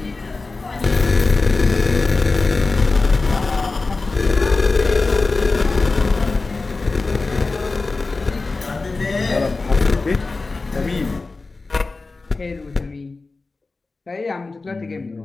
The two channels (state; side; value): quieter; right; 3.7 dB